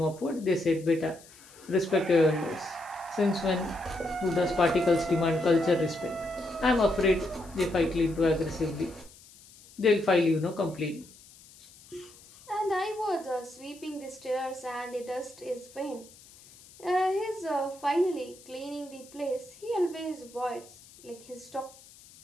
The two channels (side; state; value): left; noise; hiss, 23 dB below the sound